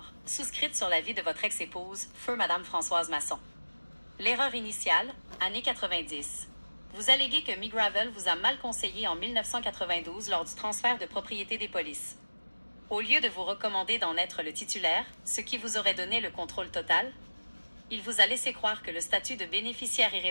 souscrites sur la vie de votre ex-épouse, feu Madame Françoise Masson. L'erreur initiale, années 90. Vous alléguez que McGravel vous a mal conseillé en 1992 lors du transfert de propriété des polices. Au lieu de vous recommander d'en être le titulaire, ce qui vous aurait donné le contrôle total, il vous a laissé croire que le statut de bénéficiaire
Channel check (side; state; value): both; inverted; correlation -1.00